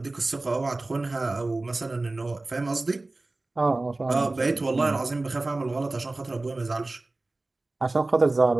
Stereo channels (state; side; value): quieter; left; 3.0 dB